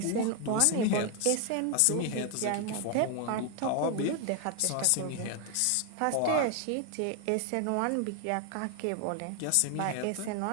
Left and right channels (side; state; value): both; different; correlation 0.00